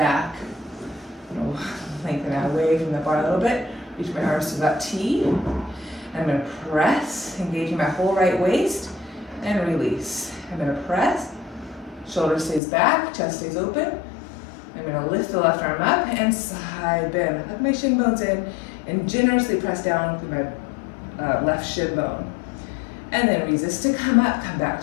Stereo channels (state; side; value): drops out; right; at 12.6 s